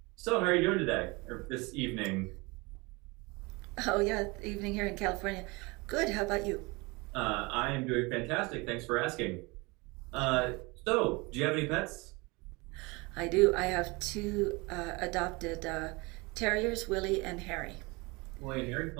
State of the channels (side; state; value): left; quieter; 25.7 dB